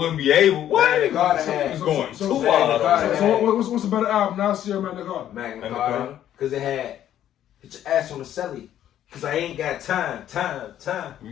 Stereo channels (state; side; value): quieter; right; 11.3 dB